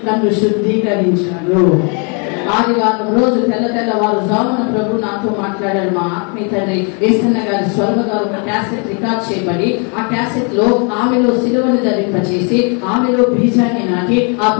నన్ను శుద్ధీకరించాడు. ఆదివారం రోజు తెల్లవారు జామున ప్రభు నాతో మాట్లాడాడు. మా ఆత్మీయ తండ్రి ఏసన్న గారి స్వర్గ గారు ఒక క్యాసెట్ రికార్డ్ చేయబడి, ఆ క్యాసెట్ లో ఆమెలో సిలువను ధరింపచేసి ఆమెలో బీజాన్ని నాటి ఆ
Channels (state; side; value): quieter; right; 36.5 dB